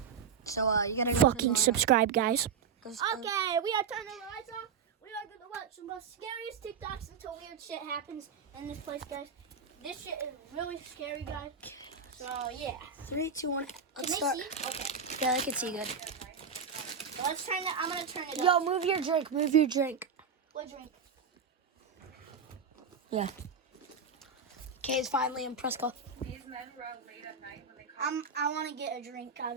So, you gotta go Fucking subscribe, guys. Okay, We are turning the lights off. We are going to watch some of the scariest TikToks until weird shit happens in this place, guys. This shit is really scary, guys. So, yeah. 3, 2, 1. Let's Can start. they see? Okay. Yeah, they can see good. So let's turn it. I'm going to turn it up. Yo, move your drink. Move your drink. What drink? Yeah. Kay's finally in Prescott. These men were out late at night when they called. I want to get a drink out of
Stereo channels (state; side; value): quieter; left; 6.0 dB